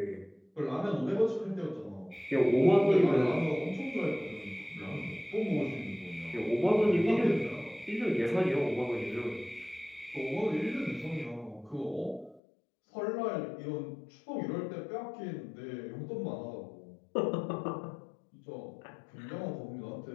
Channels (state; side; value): drops out; right; at 12.4 s